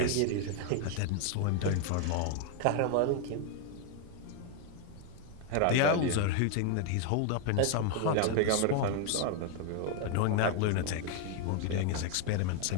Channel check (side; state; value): both; different; correlation 0.01